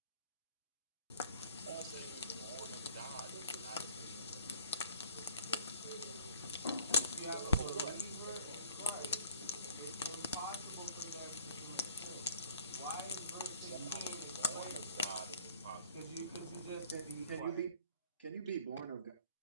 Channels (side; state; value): both; inverted; correlation -0.56